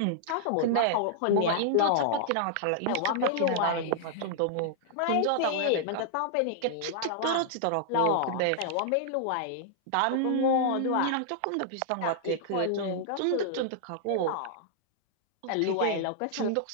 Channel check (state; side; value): different; both; correlation -0.01